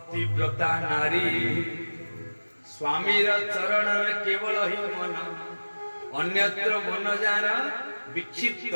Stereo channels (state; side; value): inverted; both; correlation -1.00